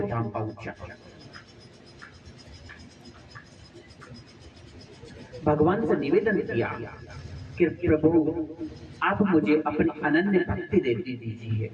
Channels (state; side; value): identical; both; correlation 1.00